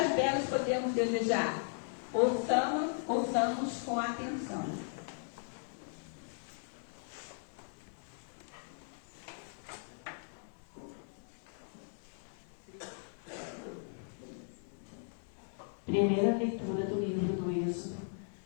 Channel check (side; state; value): right; silent; digital silence